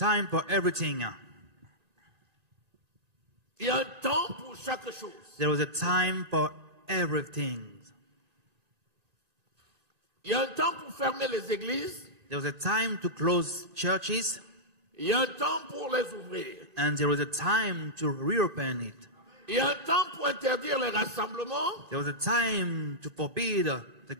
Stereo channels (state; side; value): late; left; 1.9 ms